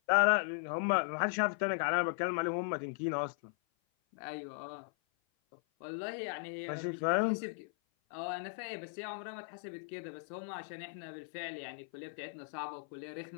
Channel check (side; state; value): right; silent; 53 dB below the other